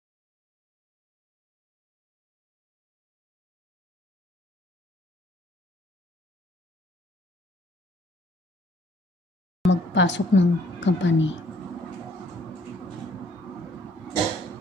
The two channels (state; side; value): normal; both; correlation 0.62